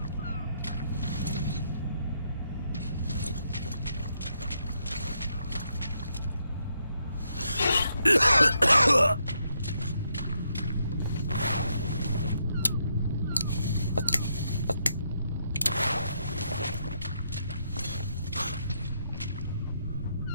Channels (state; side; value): inverted; both; correlation -0.78